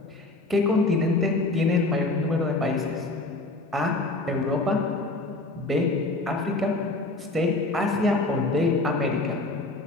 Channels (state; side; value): quieter; right; 3.0 dB